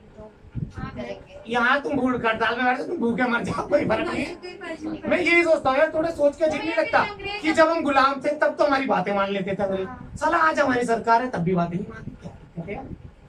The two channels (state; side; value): identical; both; correlation 1.00